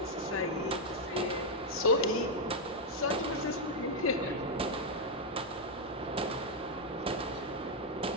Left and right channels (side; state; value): both; normal; correlation -0.01